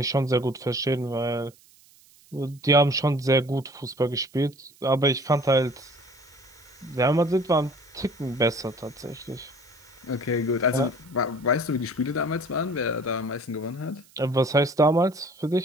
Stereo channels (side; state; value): right; noise; hiss, 28 dB below the sound